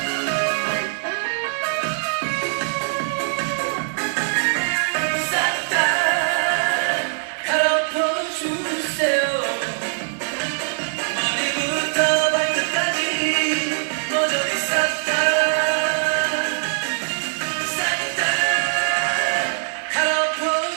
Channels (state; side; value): silent; left; digital silence